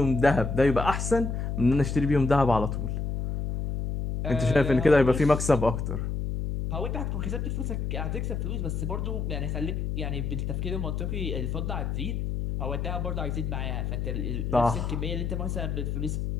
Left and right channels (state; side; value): noise; left; hum, 2 dB below the sound